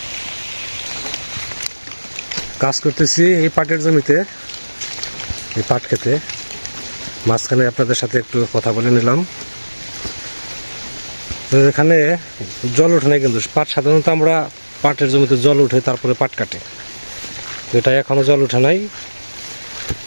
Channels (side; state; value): both; inverted; correlation -1.00